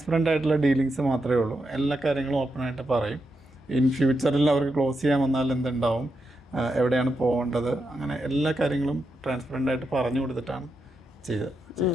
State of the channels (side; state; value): both; normal; correlation 0.85